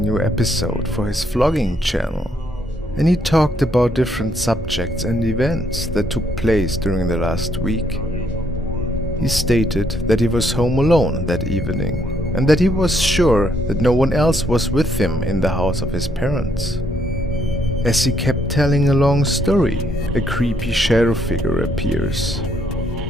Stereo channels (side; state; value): both; normal; correlation 0.72